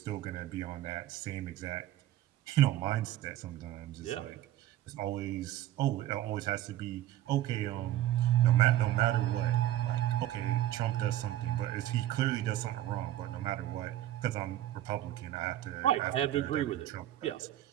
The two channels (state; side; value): quieter; left; 13.3 dB